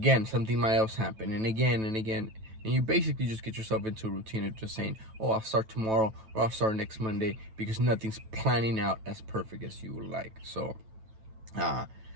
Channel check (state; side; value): late; left; 9.1 ms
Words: something might else happen, and again, and you basically just get yourself into a routine of just saying, oh, I'll start tomorrow, or I'll start next Monday, because nothing's planning out as perfect as you would like. So